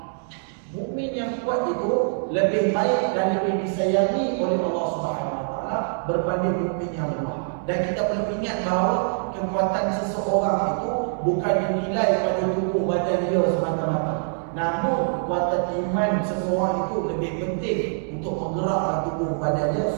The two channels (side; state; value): left; silent; 62 dB below the other